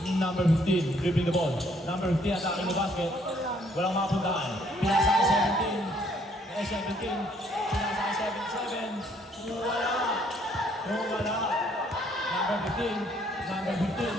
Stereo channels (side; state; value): both; normal; correlation 0.65